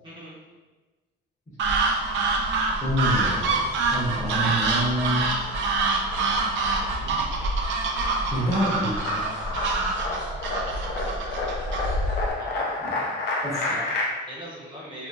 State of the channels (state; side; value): normal; both; correlation 0.21